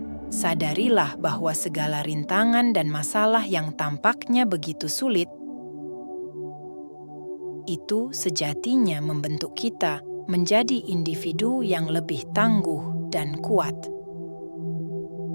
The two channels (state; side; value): inverted; both; correlation -1.00